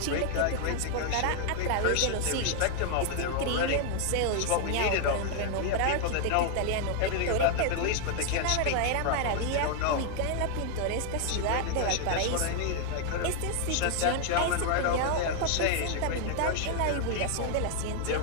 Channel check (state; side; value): different; both; correlation 0.00